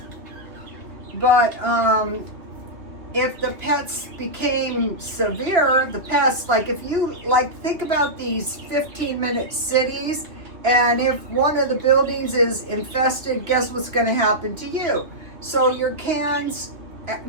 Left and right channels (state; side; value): late; left; 2.6 ms